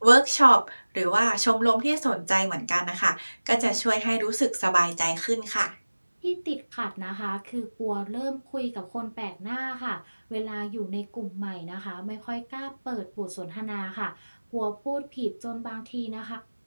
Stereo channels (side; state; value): both; inverted; correlation -1.00